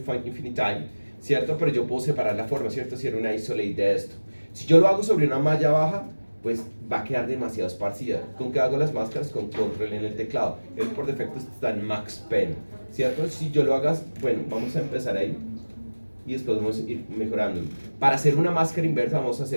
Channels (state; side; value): inverted; both; correlation -1.00